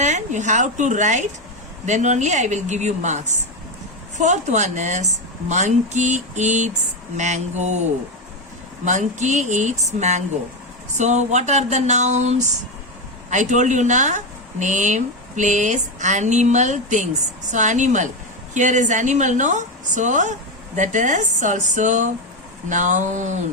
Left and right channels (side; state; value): both; normal; correlation 0.10